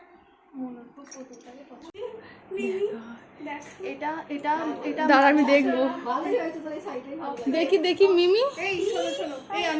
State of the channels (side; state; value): both; identical; correlation 1.00